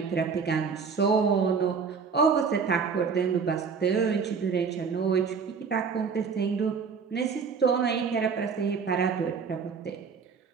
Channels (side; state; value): left; quieter; 5.7 dB